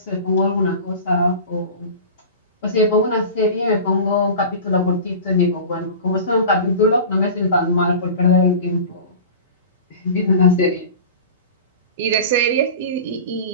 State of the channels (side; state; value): both; inverted; correlation -0.35